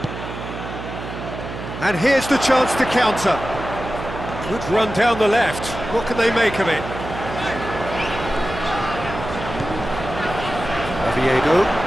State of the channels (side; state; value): right; noise; hum, 9 dB below the sound